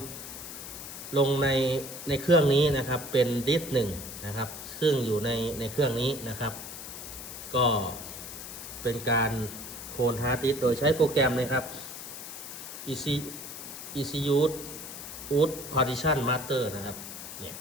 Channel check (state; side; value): noise; left; hiss, 10 dB below the sound